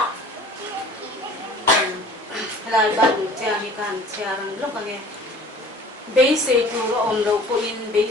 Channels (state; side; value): normal; both; correlation 0.47